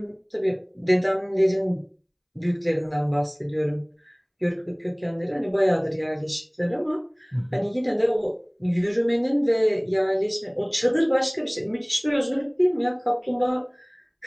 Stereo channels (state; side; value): identical; both; correlation 1.00